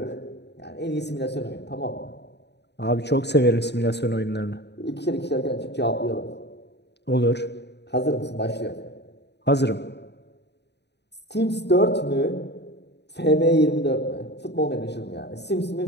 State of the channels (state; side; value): late; right; 0.49 ms